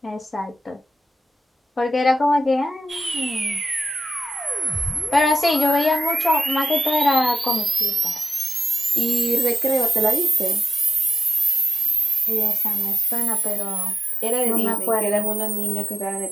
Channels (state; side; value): normal; both; correlation 0.92